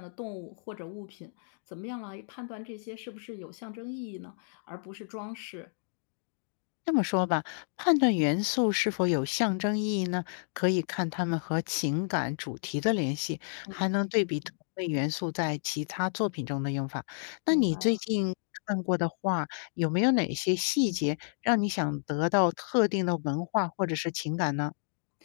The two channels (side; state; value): right; silent; digital silence